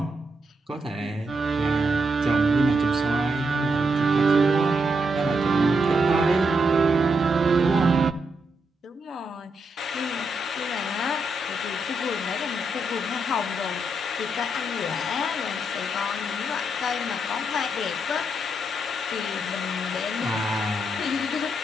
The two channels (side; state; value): both; normal; correlation 0.81